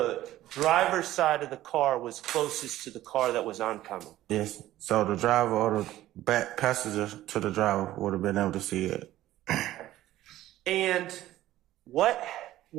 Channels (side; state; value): left; quieter; 14.5 dB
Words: driver's side of the car was closest to the car that was oncoming. Yes. So the driver or the back passenger to the driver would have been able to see it. And what